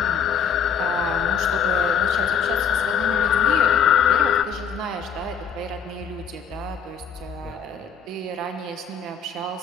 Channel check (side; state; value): right; quieter; 6.9 dB